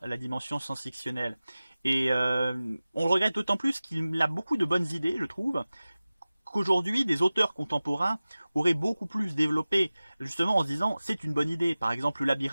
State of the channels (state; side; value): inverted; both; correlation -0.97